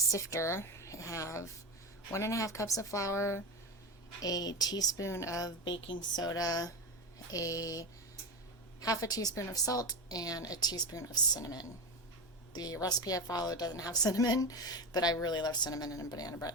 I have 1.5 cups of flour, a teaspoon of baking soda, a 1/2 teaspoon of salt, and a teaspoon of cinnamon. The recipe I followed doesn't have cinnamon, but I really love cinnamon in banana bread,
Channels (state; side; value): normal; both; correlation 0.19